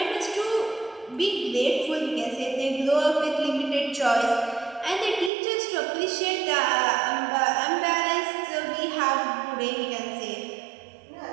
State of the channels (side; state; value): left; drops out; at 5.3 s